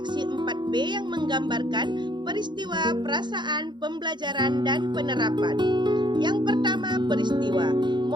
4B yang menggambarkan peristiwa, perasaan, pembelajaran, dan penerapan. Yang pertama, peristiwa.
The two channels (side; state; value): left; late; 0.22 ms